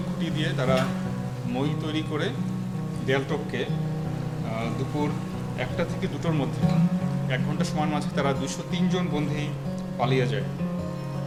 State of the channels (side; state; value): both; identical; correlation 1.00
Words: খুঁটি দিয়ে তারা মই তৈরি করে দেয়াল টপকে দুপুর 1টা থেকে 2টোর মধ্যে 1 ঘন্টা সময়ের মাঝে তারা 203 জন বন্দী পালিয়ে যায়।